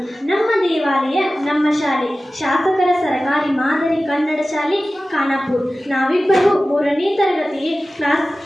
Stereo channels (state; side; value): normal; both; correlation 0.96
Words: ನಮ್ಮ ದೇವಾಲಯ ನಮ್ಮ ಶಾಲೆ, ಶಾಸಕರ ಸರಕಾರಿ ಮಾದರಿ ಕನ್ನಡ ಶಾಲೆ ಖಾನಾಪುರ. ನಾವಿಬ್ಬರು 3ನೇ ತರಗತಿಗೆ